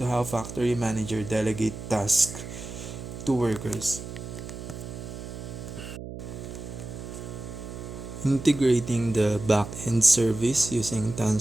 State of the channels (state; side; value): noise; right; hum, 10 dB below the sound